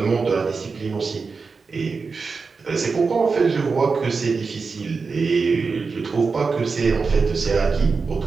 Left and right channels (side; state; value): left; quieter; 4.7 dB